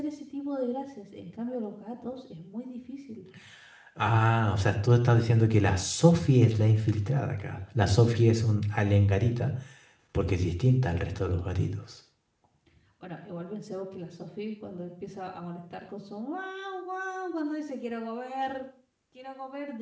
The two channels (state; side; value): identical; both; correlation 1.00